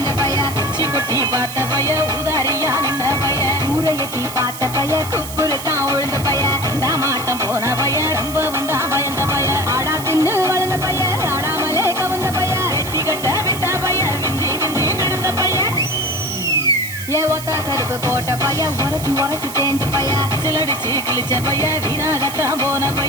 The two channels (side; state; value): right; noise; hiss, 11 dB below the sound